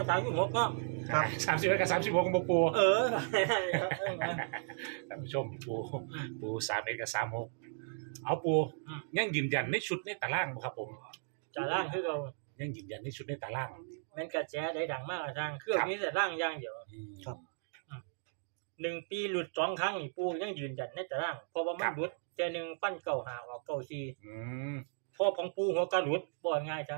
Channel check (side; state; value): left; silent; digital silence